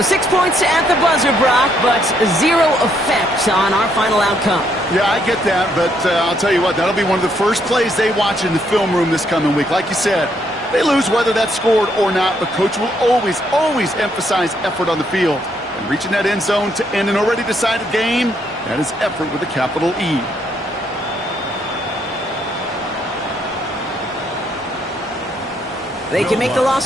6 points at the buzzer, Brock, but 0 effect on our final outcome. Yeah, I get that, but I'll tell you what, that'll be one of the first plays they watch in the film room this coming week. Like you said, they lose whether that's scored or not, but Coach will always emphasize effort on the field. And reaching that end zone to end an already decided game, that is effort with a capital E. They can make the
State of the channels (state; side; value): normal; both; correlation 0.72